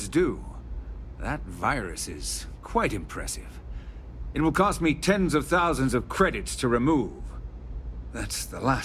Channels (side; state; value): both; identical; correlation 1.00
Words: due. That virus is quite impressive. It will cost me tens of thousands of credits to remove. That's the